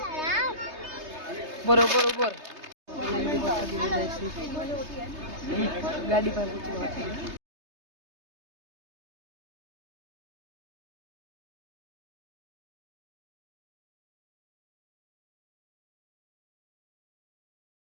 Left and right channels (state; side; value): late; left; 3.3 ms